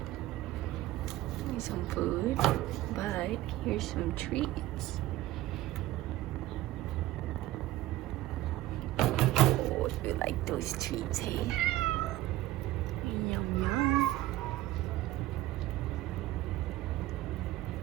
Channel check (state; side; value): quieter; left; 16.1 dB